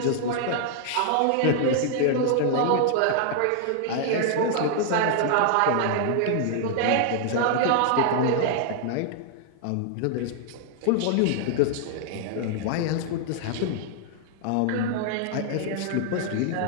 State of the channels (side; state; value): both; different; correlation -0.01